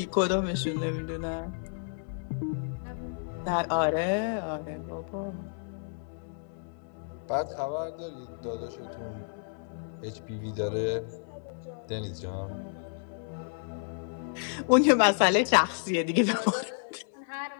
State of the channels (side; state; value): right; silent; digital silence